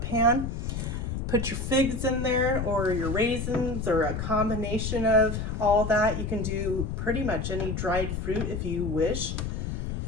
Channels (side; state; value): left; noise; rumble, 3 dB below the sound